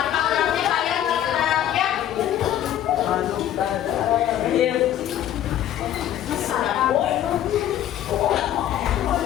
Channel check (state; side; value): quieter; right; 11.4 dB